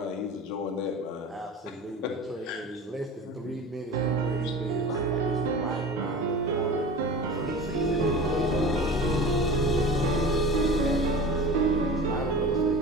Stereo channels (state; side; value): normal; both; correlation 0.35